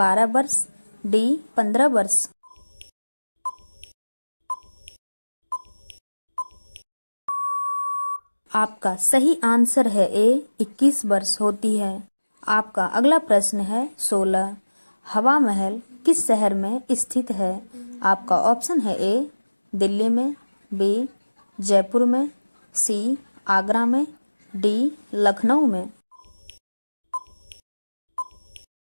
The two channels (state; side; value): inverted; both; correlation -1.00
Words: वर्ष, डी 15 वर्ष। आपका सही आंसर है ए 21 वर्ष होती है। आपका अगला प्रश्न है 16। हवा महल किस शहर में स्थित है? आपका ऑप्शन है ए दिल्ली में, बी जयपुर में, सी आगरा में, डी लखनऊ में।